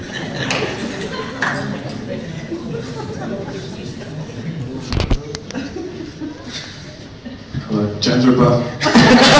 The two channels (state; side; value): identical; both; correlation 1.00